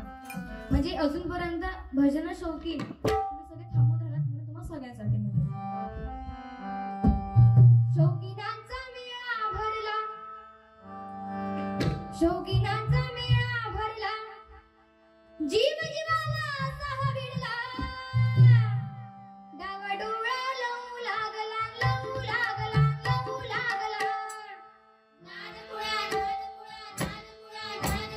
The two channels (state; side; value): identical; both; correlation 1.00